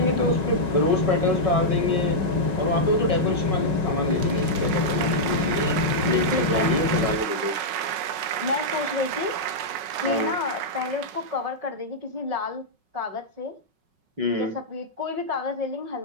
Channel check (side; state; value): left; late; 5.4 ms